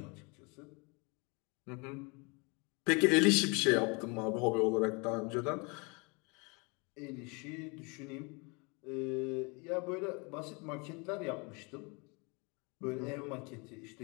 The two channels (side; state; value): right; quieter; 30.4 dB